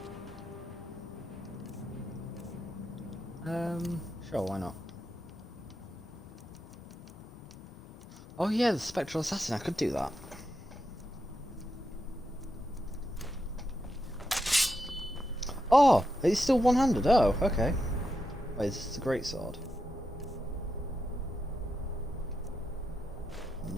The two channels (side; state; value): both; normal; correlation 0.85